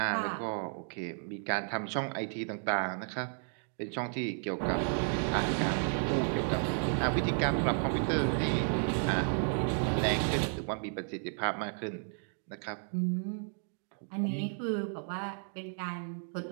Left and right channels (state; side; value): silent; left; 56 dB below the other